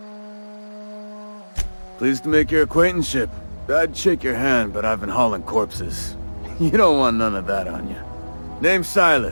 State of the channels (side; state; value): both; inverted; correlation -1.00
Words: Pleased to make your acquaintanceship. I'd shake your hand, but I've been hauling corpses. You don't want none of that on you. Name's